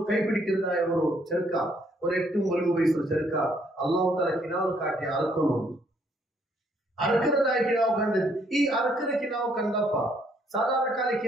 ಕೈ പിടിക്കുന്നതായ ഒരു ചെറുക്ക, ഒരു 8-9 വയസ്സുള്ള ചെറുക്ക അല്ലാഹു തആല കിനാവ് കാട്ടി അറക്കുന്നു. അറക്കുന്നതായ കിനാവ് കണ്ടത്. ഈ അറക്കുന്ന കിനാവ് കണ്ടപ്പ സാധാരണ കാല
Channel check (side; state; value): both; normal; correlation 0.68